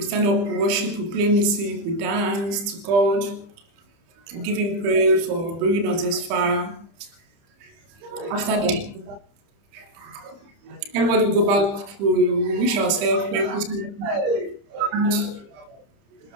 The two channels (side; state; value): left; late; 30 ms